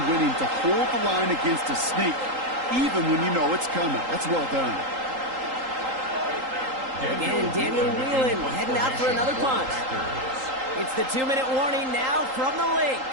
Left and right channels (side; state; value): left; late; 3.8 ms